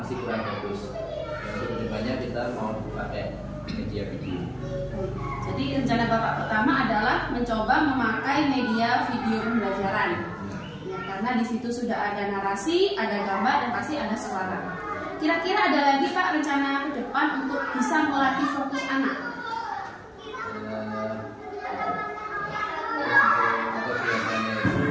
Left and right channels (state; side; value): identical; both; correlation 1.00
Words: kurang bagus. Yang kedepannya kita mau pakai media video. Jadi rencana Bapak pertama adalah mencoba memakai media video pembelajaran. Ya, karena di situ sudah ada narasi, ada gambar, dan pasti ada suara. Kira-kira ada lagi Pak rencana ke depan untuk bisa melatih fokus anak?